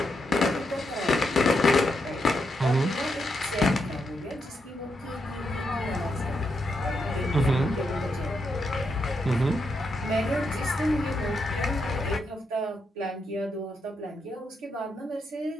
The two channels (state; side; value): normal; both; correlation 0.81